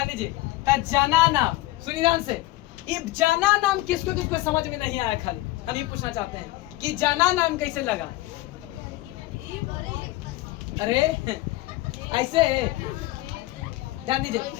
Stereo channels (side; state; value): right; quieter; 18.1 dB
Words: दीजिए, तो जना नाम, सुनिए ध्यान से, ये जना नाम किसको समझ में नहीं आया, खाली हम ये पूछना चाहते हैं कि जना नाम कैसे लगा। अरे ऐसे ध्यान दीजिए